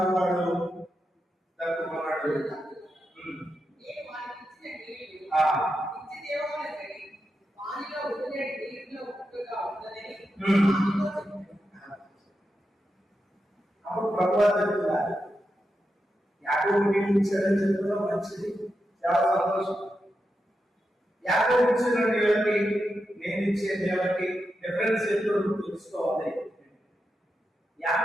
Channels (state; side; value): normal; both; correlation 0.88